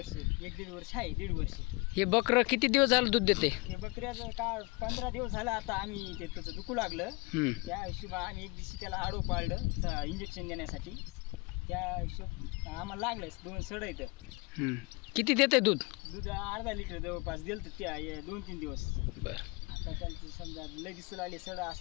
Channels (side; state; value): right; quieter; 25.6 dB